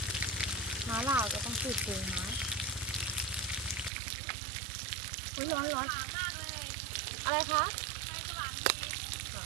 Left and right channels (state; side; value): drops out; left; at 3.9 s